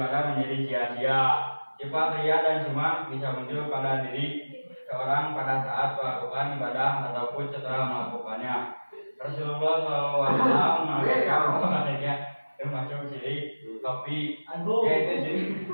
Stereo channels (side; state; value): both; inverted; correlation -1.00